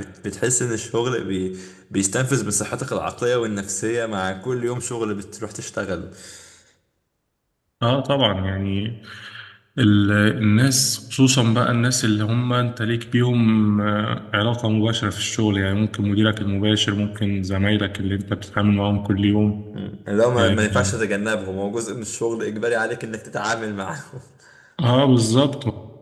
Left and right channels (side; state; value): both; identical; correlation 1.00